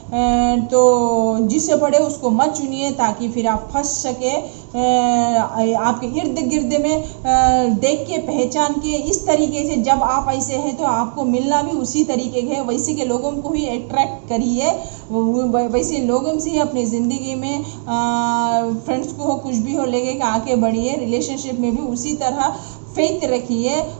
तो जिससे पड़े उसको मत चुनिए, ताकि फिर आप फंस सके। आपके इर्द गिर्द में देख के पहचान के इस तरीके से जब आप ऐसे हैं तो आपको मिलना भी उसी तरीके के वैसे के लोगों को ही अट्रैक्ट करिए, वैसे लोगों से ही अपनी ज़िंदगी में फ्रेंड्स को हो कुछ भी हो लेके आके बढ़िए। रिलेशनशिप में भी उसी तरह फेथ रखिए,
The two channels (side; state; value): left; silent; digital silence